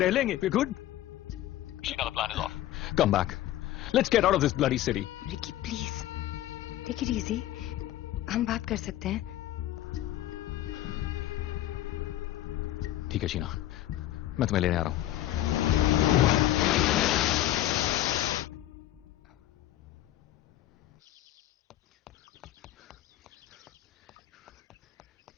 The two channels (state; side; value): quieter; right; 13.7 dB